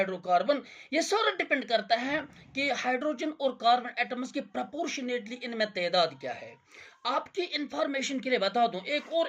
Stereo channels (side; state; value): both; identical; correlation 1.00